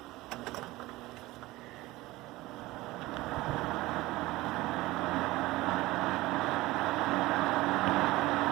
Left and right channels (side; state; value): left; quieter; 19.0 dB